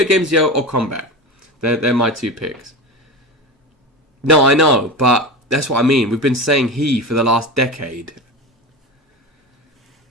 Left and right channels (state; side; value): normal; both; correlation 0.25